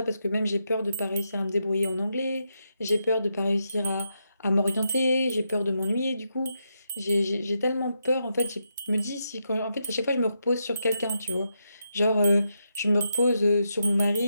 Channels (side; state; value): both; inverted; correlation -0.83